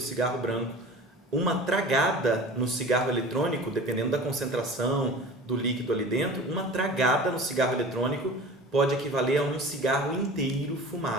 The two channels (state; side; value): normal; both; correlation 0.39